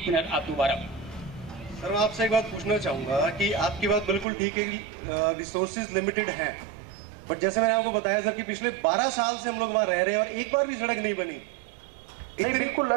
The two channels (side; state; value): left; drops out; at 4.2 s